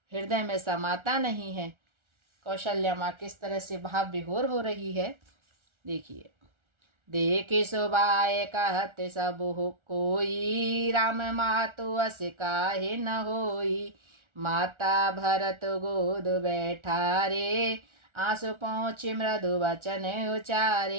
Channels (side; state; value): left; late; 1.4 ms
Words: हृदय में समाता नहीं है। कौशल्या माँ किस तरह से भाव विभोर हो रही है, देखिए। देखे शोभाए कहत सब हो कोई, राम मातु अस काहे न होई। माता भरत गोद बैठा रे, आंसू पहुँचे मृदु वचन